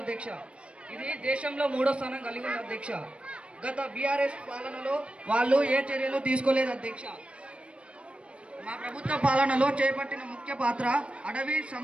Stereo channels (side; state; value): left; late; 0.060 ms